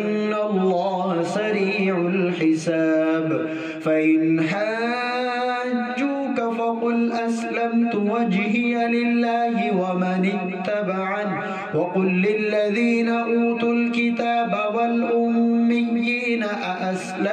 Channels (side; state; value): both; identical; correlation 1.00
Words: الله سريع الحساب فإن حاجوك فقل أسلمت وجهي لله ومن اتبعني وقل للذين أوتوا الكتاب والأميين